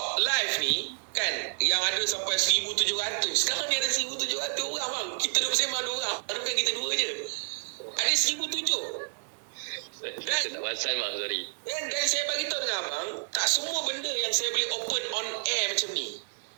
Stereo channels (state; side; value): silent; left; 58 dB below the other